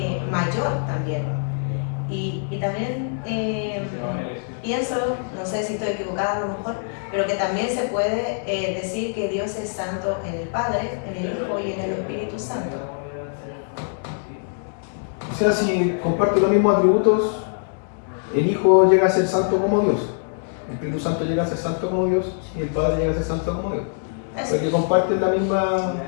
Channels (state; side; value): silent; right; digital silence